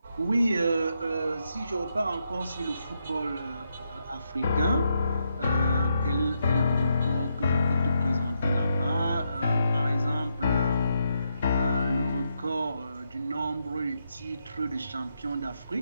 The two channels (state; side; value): inverted; both; correlation -0.81